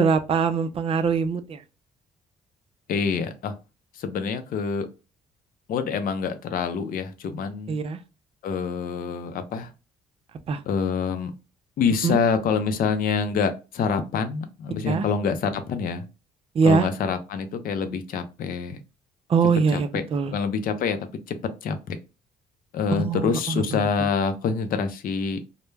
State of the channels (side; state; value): both; normal; correlation 0.47